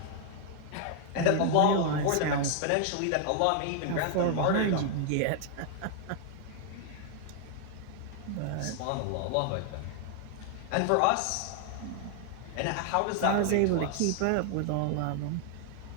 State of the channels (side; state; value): both; different; correlation 0.00